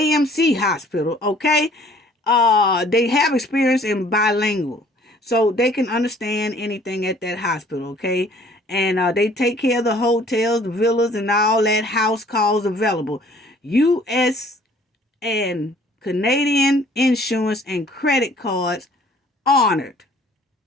hospital, okay? They have experience in bilingual, so they can understand anything at that hospital, okay? And they take care of the hotels, the villas, and all that house calls available. U.S. and Canadian insurance and credit cards honored.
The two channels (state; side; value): normal; both; correlation 0.56